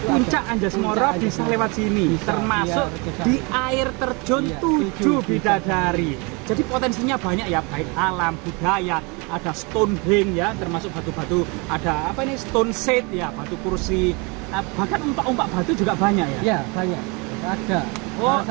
Puncak ada- Anjas-Moro Puncak bisa Anjas-Moro. lewat sini, Bisa, termasuk iya, bisa. di air terjun Iya, 7 7 bidadari. Jadi potensinya banyak ya, baik alam, budaya, ada Stonehenge ya, termasuk batu-batu, ada apa ini, stone set ya, batu kursi, bahkan umpak-umpak batu juga banyak ya. Ya, banyak. Ada. Oh.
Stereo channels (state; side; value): quieter; left; 29.6 dB